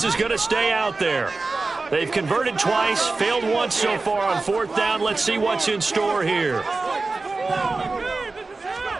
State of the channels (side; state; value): left; quieter; 3.7 dB